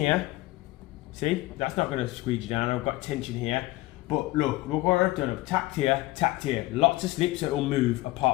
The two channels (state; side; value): quieter; right; 19.1 dB